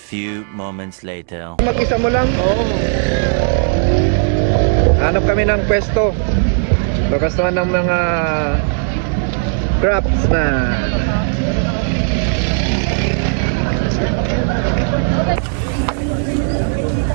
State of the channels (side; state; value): left; silent; 69 dB below the other